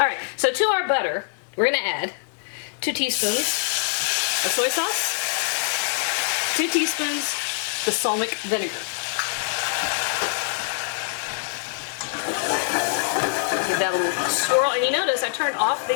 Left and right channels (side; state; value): right; silent; digital silence